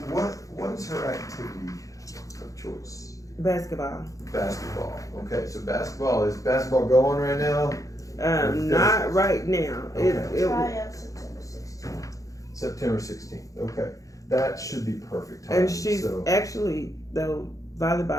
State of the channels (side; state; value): right; late; 0.16 ms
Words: What's her activity of choice? Basketball. Basketball. Okay, so is basketball going right now? Not right now. Okay. Try out September 16th. September 16th. Okay, that should be perfect time. And she's actually, though,